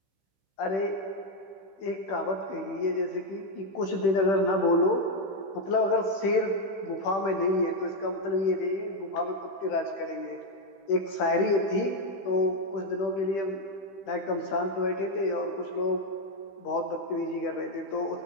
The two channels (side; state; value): right; late; 15 ms